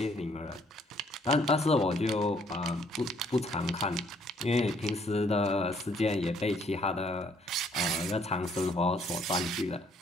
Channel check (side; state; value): both; normal; correlation 0.65